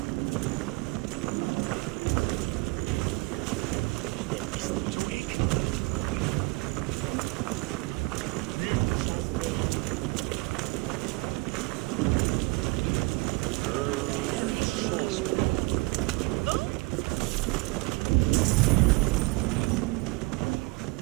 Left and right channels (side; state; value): left; quieter; 25.2 dB